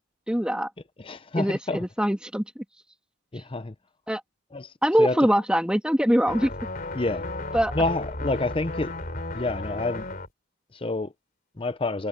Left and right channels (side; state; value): both; normal; correlation 0.79